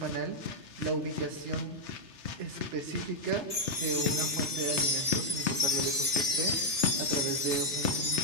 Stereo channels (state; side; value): late; left; 3.3 ms